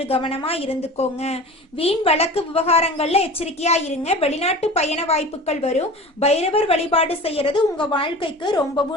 கவனமா இருந்துக்கோங்க. வீண் வழக்கு விவகாரங்கள்ல எச்சரிக்கையா இருங்க. வெளிநாட்டு பயண வாய்ப்புகள் வரும். பைரவர் வழிபாடு செய்யறது உங்க வாழ்க்கைக்கு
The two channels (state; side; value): normal; both; correlation 0.36